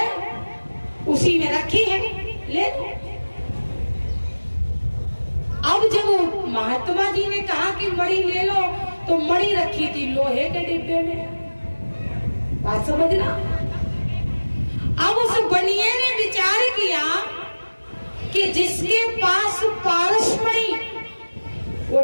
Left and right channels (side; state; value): both; inverted; correlation -1.00